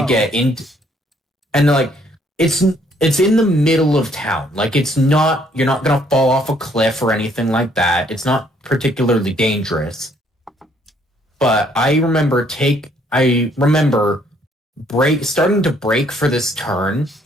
get into, and like it's in the middle of town. Like you're not gonna fall off a cliff or anything like that. It's not particularly dangerous. But I remember starting to brake for this turn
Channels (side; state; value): both; normal; correlation 0.66